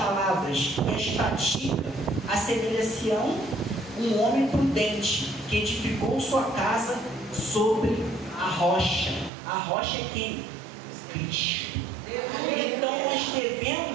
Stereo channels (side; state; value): left; drops out; at 9.3 s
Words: e as pratica, assemelha-se a um homem prudente que edificou sua casa sobre a rocha. A rocha é quem? Cristo. Então nós